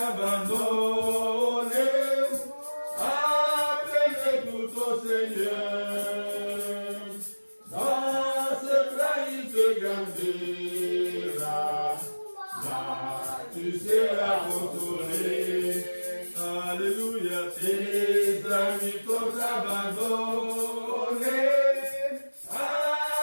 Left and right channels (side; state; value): both; inverted; correlation -1.00